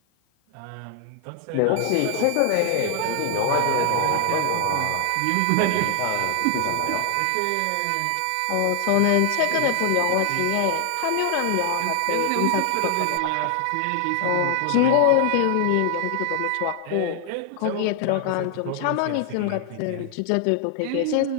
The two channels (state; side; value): different; both; correlation 0.00